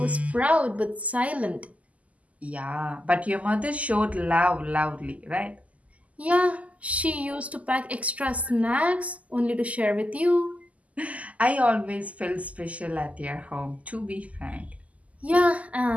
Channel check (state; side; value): late; left; 0.071 ms